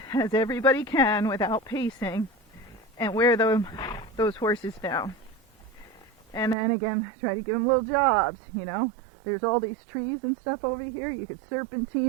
as everybody can without pacing, and wear those horses down. And then again, try to give them little jobs, you know. There's all these trees and stuff over here. You could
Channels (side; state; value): left; drops out; at 6.6 s